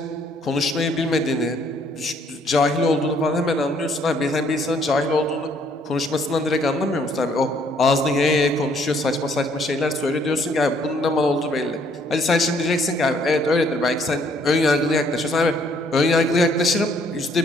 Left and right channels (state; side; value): normal; both; correlation 0.65